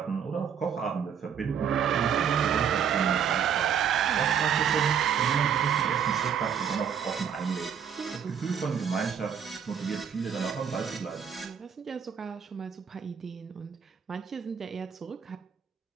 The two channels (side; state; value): left; quieter; 7.8 dB